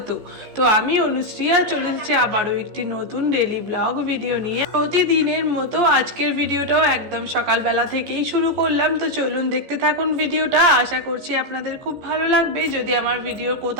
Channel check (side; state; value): left; late; 14 ms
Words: তো আমি অনুশ্রিয়া চলে এসেছি আবারও একটি নতুন ডেলি ব্লগ ভিডিও নিয়ে। প্রতিদিনের মতো আজকের ভিডিওটাও একদম সকালবেলা থেকেই শুরু করলাম। তো চলুন দেখতে থাকুন ভিডিওটা। আশা করছি আপনাদের খুব ভালো লাগবে। যদি আমার ভিডিওর